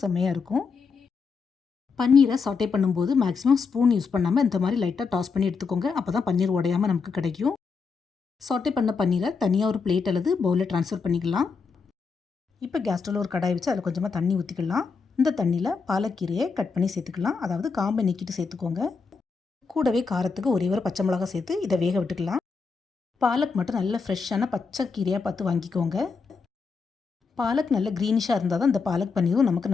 செம்மையாக இருக்கும். பன்னீரை சாட்டே பண்ணும்போது மேக்ஸிமம் ஸ்பூன் யூஸ் பண்ணாமல் இந்த மாதிரி லைட்டாக டாஸ் பண்ணி எடுத்துக்கோங்க. அப்போ தான் பன்னீர் உடையாமல் நமக்கு கிடைக்கும். சாட்டே பண்ண பன்னீரை தனியாக ஒரு பிளேட் அல்லது பவுலில் ட்ரான்ஸ்ஃபர் பண்ணிக்கலாம். இப்போ கேஸ் ஸ்டவ்வில் ஒரு கடாய் வச்சு அதில் கொஞ்சமாக தண்ணி ஊற்றிக்கலாம். இந்த தண்ணியில் பாலக்கீரையை கட் பண்ணி சேர்த்துக்கலாம். அதாவது காம்பை நீக்கிட்டு சேர்த்துக்கோங்க. கூடவே காரத்துக்கு ஒரே ஒரு பச்சை மிளகா சேர்த்து இதை வேக விட்டுக்கலாம். பாலக் மட்டும் நல்ல ஃப்ரெஷ்ஷான பச்சை கீரையாக பார்த்து வாங்கிக்கோங்க. பாலக் நல்ல க்ரீனிஷாக இருந்தால் தான் இந்த பாலக் பன்னீரும் நமக்கு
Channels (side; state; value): right; quieter; 5.0 dB